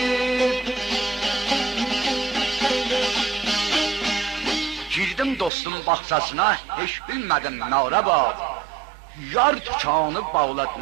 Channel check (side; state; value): left; drops out; at 5.5 s